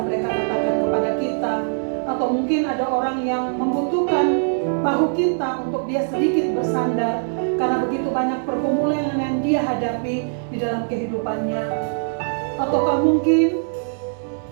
mereka katakan kepada kita, atau mungkin ada orang yang membutuhkan bahu kita untuk dia sedikit bersandar karena begitu banyak pergumulan yang dia hadapi di dalam kehidupannya. Ataukah mungkin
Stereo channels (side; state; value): left; silent; digital silence